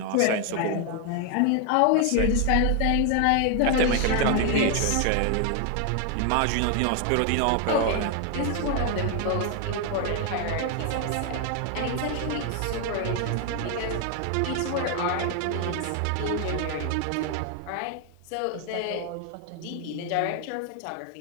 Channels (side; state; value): both; different; correlation 0.00